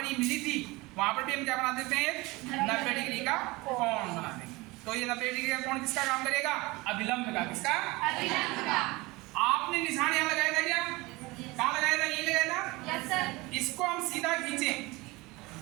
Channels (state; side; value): quieter; left; 22.6 dB